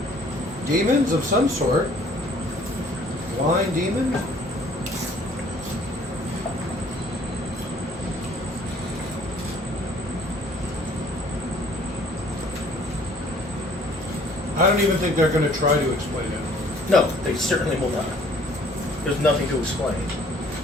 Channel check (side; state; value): both; normal; correlation 0.57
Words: Demons of some sort. Blind demon? I don't even think they're going to try to explain it. No, they certainly will not. There's nothing to explain.